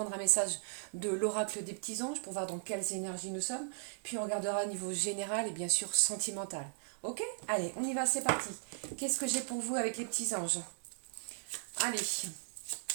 un message de l'oracle des petits anges pour voir dans quelles énergies nous sommes. Puis on regardera à niveau général et bien sûr sentimental. Ok? Allez, on y va, c'est parti. Qu'est-ce que j'ai pour vous avec les petits anges? Allez.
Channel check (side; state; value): left; silent; digital silence